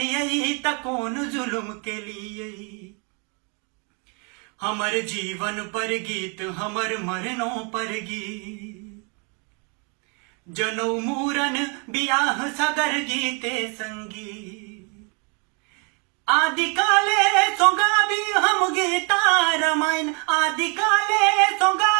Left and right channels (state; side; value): quieter; left; 35.0 dB